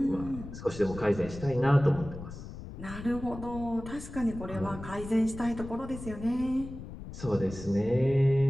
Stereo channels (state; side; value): noise; left; rumble, 12 dB below the sound